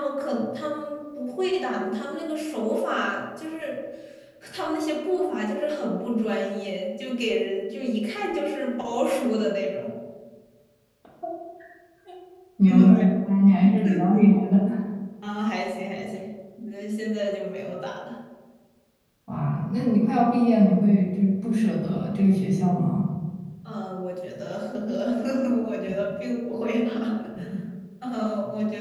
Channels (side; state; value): both; identical; correlation 1.00